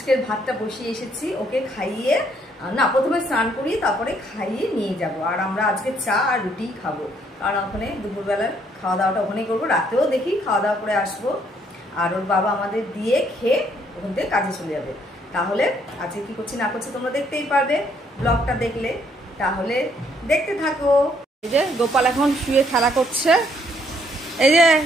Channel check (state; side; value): normal; both; correlation 0.68